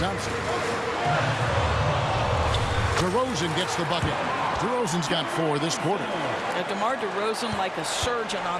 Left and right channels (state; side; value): identical; both; correlation 1.00